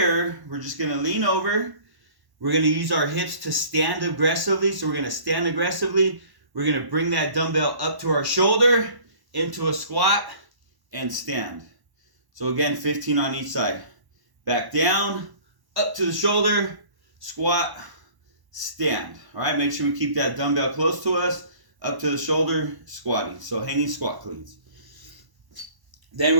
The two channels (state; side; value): late; left; 1.1 ms